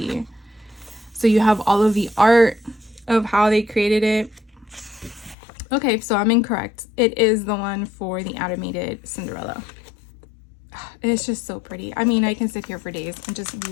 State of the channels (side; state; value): right; drops out; at 5.4 s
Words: So you have all of the art of how they created it. Okay, so I'm incorrect. It is the one for the animated Cinderella. It's just so pretty. I mean, I can sit here for days and just